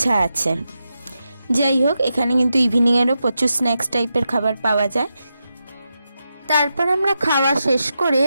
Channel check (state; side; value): inverted; both; correlation -0.87